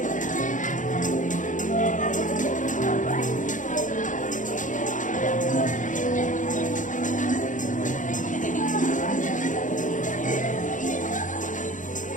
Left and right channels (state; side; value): late; right; 0.37 ms